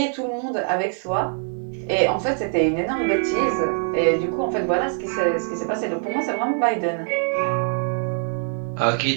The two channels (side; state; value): left; silent; 55 dB below the other